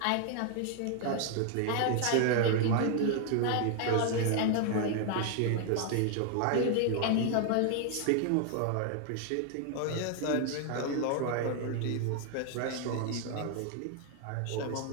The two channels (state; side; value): different; both; correlation 0.00